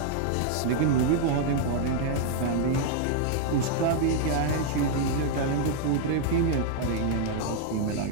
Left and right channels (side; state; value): both; different; correlation 0.00